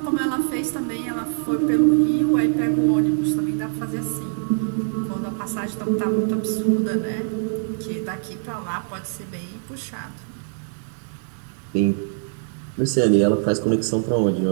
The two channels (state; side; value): silent; left; 59 dB below the other